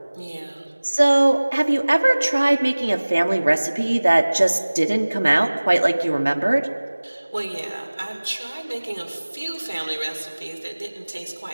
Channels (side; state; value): both; inverted; correlation -1.00